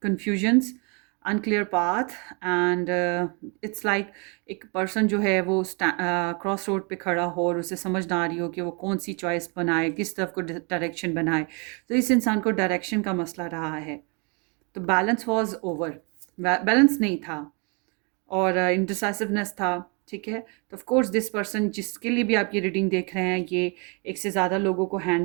unclear path and it's like एक पर्सन जो है वो क्रॉस रोड पे खड़ा हो और उसे समझ ना आ रही हो कि वो कौन सी चॉइस बनाए, किस तरफ को डायरेक्शन बनाए. तो इस इंसान को डायरेक्शन का मसला रहा है. तो बैलेंस वॉज ओवर, बैलेंस नहीं था और इंडिसाइसिवनेस था. ठीक है. तो ऑफ कोर्स दिस पर्सन जिसके लिए भी आप ये रीडिंग देख रहे हैं, ये एक से ज़्यादा लोगों को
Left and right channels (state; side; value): quieter; left; 33.5 dB